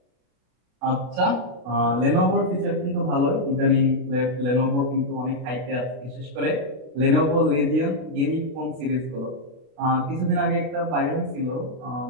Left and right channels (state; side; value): late; left; 32 ms